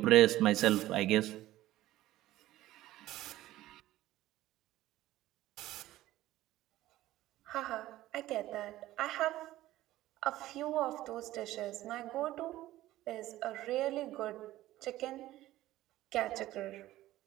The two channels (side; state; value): left; quieter; 15.5 dB